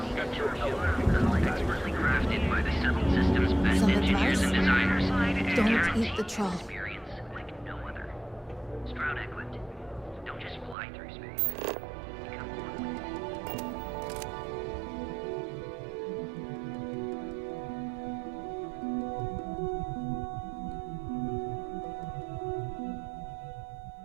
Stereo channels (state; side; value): drops out; left; at 10.8 s